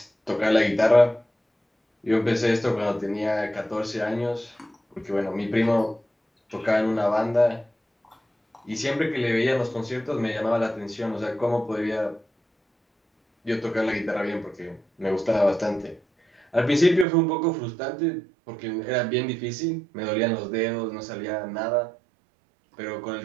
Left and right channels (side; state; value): left; drops out; at 17.1 s